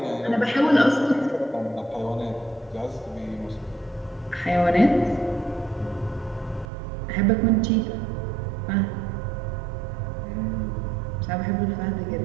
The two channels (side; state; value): left; drops out; at 6.7 s